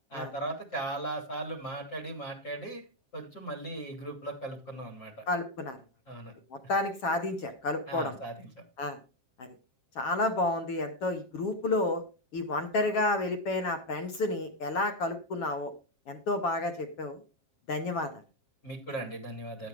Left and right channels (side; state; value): right; late; 8.0 ms